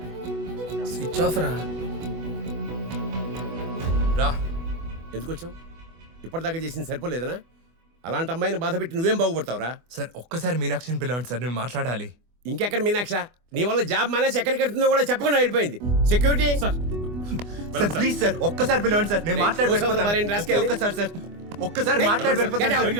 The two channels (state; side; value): late; left; 24 ms